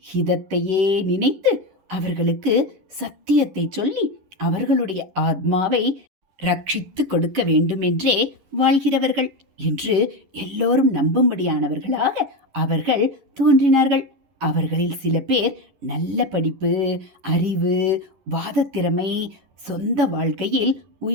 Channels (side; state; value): left; late; 11 ms